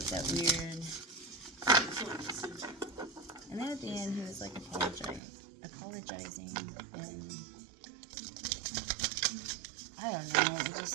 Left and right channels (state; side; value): drops out; left; at 5.2 s